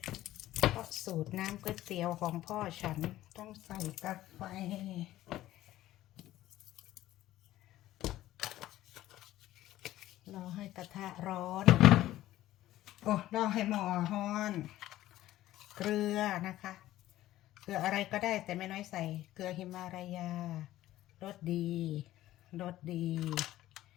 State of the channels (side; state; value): right; quieter; 14.7 dB